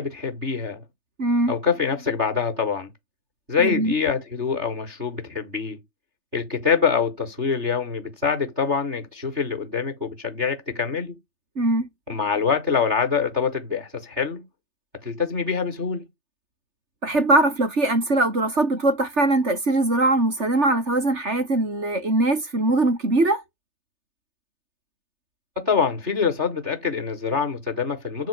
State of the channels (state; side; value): late; left; 3.3 ms